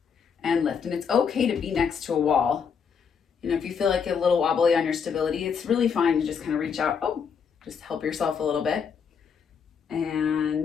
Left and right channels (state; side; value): quieter; right; 6.6 dB